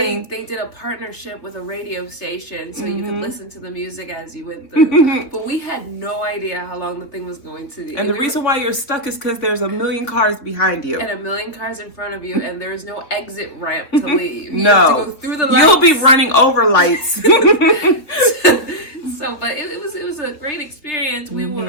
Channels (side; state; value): right; late; 3.3 ms